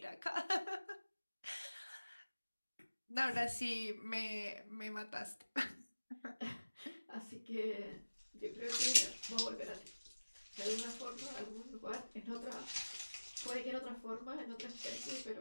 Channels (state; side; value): inverted; both; correlation -1.00